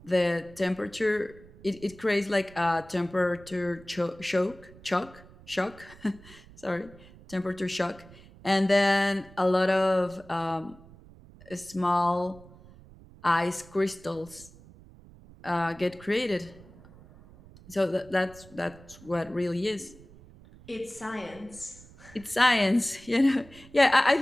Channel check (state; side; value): noise; right; rumble, 22 dB below the sound